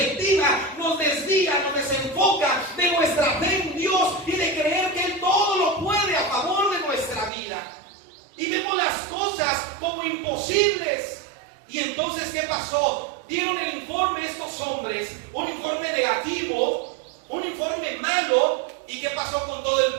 nos desvía, nos desenfoca de nuestra fe en Dios y de creer que Él todo lo puede a favor de nuestra vida. Y vemos las cosas como imposibles. Y entonces, ¿qué pasó? Dieron el informe estos hombres, un informe negativo, un informe malo. ¿Y qué pasó con todo el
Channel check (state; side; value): drops out; left; at 7.3 s